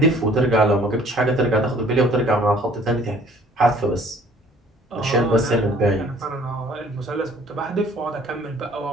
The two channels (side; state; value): both; normal; correlation 0.55